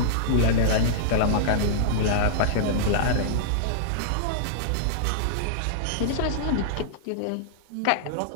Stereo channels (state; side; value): different; both; correlation -0.02